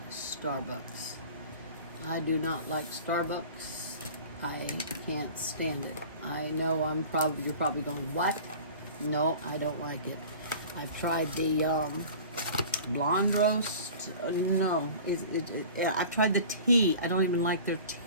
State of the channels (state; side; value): inverted; both; correlation -0.41